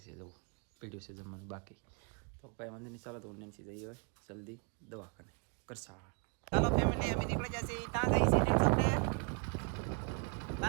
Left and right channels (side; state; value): left; quieter; 36.1 dB